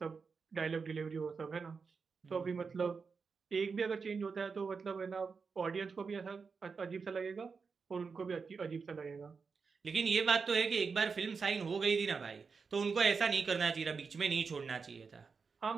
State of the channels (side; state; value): left; quieter; 5.2 dB